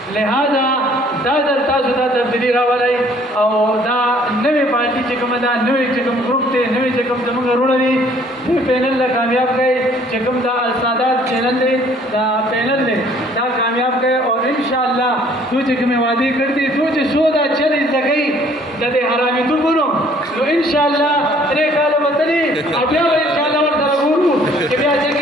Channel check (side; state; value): both; normal; correlation 0.59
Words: لہذا دا ځل تاسو ته تبدیلي راولئ او دا نوې پارټي چې کومه ده، نوې چې کوم ګروپ دی، نوې چې کوم زموږ وروڼه دي، دې پینل له کامیاب کړئ. چې کوم دا السادات چینل دی، دا پینل دی، دا کامیاب کړئ اور انشاءالله تو چې کومې وعدې کړې دي، تو چې څو دا چلې زده کوي د دې حرامیتوبونو، نو انشاءالله 3 کاله به تلي او بیا به انشاءالله ورسره ګورو چې بیا چې